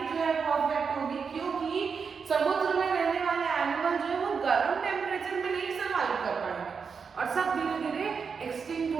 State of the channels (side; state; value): left; quieter; 5.8 dB